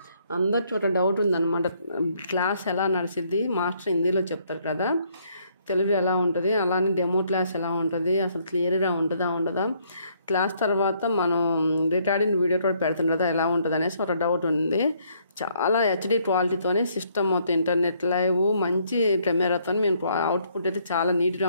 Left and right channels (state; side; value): inverted; both; correlation -0.68